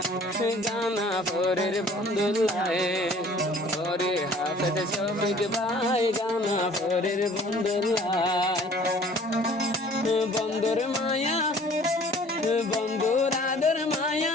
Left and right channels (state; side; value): normal; both; correlation 0.52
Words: গানা পরের বন্ধুল্লায়, ওরে হাফেজ শফিক ভাই গানা পরের বন্ধুল্লায়। বন্ধুর মায়া, বন্ধুর আদর মায়া